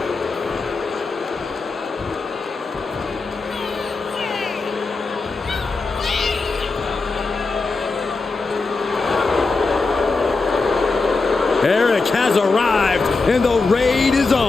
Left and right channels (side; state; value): right; quieter; 3.9 dB